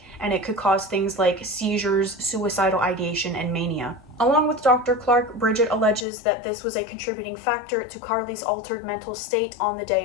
and it could cause things like seizures, suicidal ideation, and mania. Along with Dr. Clark, Bridget alleges that this was a contributing factor to Carly's altered mental state on the day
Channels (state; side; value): drops out; right; at 6.1 s